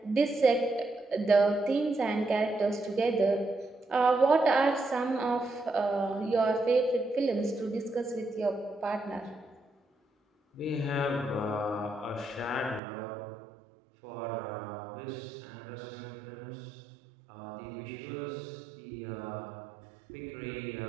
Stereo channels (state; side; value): drops out; left; at 12.8 s